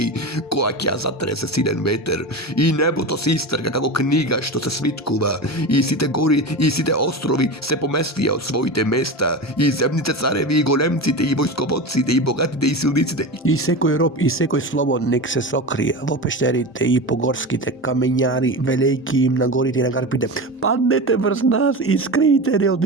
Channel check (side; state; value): both; normal; correlation 0.25